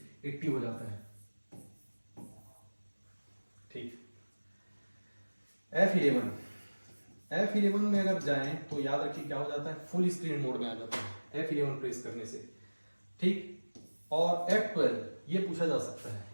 एक्टिव हो जाता है। F11, F11 में अगर जाएं तो याद रखिए क्या हो जाता है, फुल स्क्रीन मोड में आ जाता है F11 प्रेस करने से, ठीक। और F12 ये पूछा जा सकता है,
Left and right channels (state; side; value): inverted; both; correlation -1.00